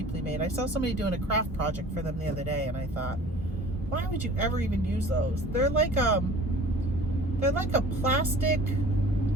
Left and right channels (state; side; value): normal; both; correlation 0.46